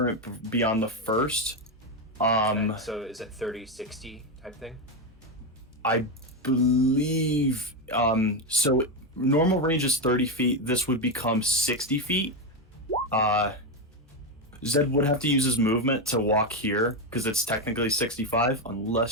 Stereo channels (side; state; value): both; normal; correlation 0.09